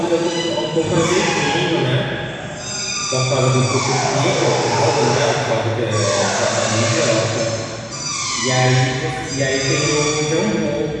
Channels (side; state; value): both; identical; correlation 1.00